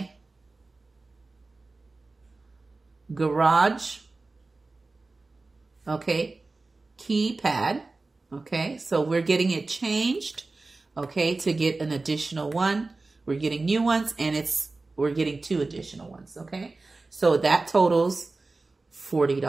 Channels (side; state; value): left; quieter; 3.5 dB